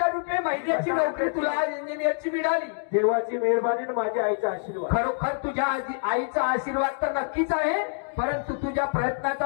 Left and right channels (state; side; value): silent; right; digital silence